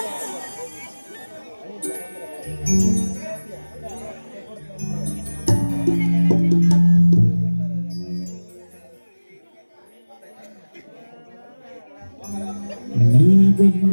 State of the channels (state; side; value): inverted; both; correlation -1.00